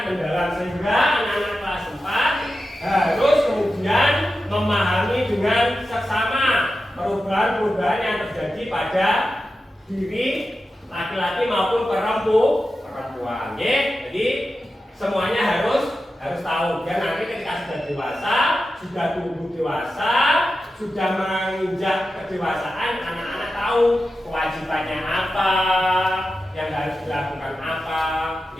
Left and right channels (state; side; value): normal; both; correlation 0.91